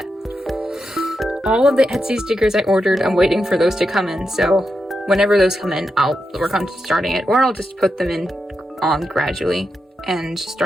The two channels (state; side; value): normal; both; correlation 0.86